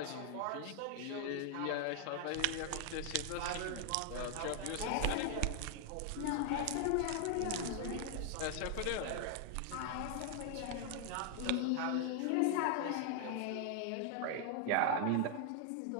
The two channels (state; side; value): different; both; correlation 0.00